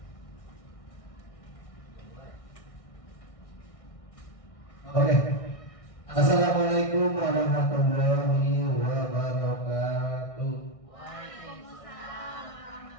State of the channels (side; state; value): right; late; 1.6 ms